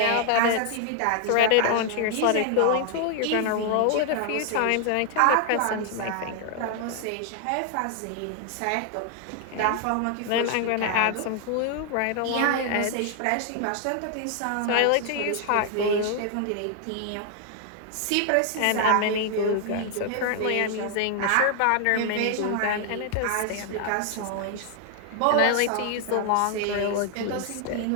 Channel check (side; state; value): both; different; correlation 0.00